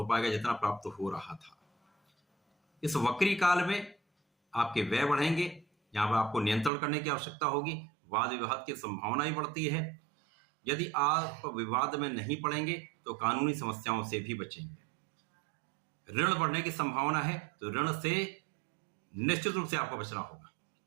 पाएगा जितना प्राप्त हो रहा था। इस वक्री काल में आपके व्यय बढ़ेंगे, यहां पर आपको नियंत्रण करने की आवश्यकता होगी। वाद विवाद की संभावना ही बढ़ती है। यदि आप विवाद में नहीं पड़ेंगे तो कानूनी समस्याओं से भी बचेंगे। ऋण बढ़ने की संभावना है तो ऋण से निश्चित रूप से आपको बचना होगा।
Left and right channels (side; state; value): left; drops out; at 6.7 s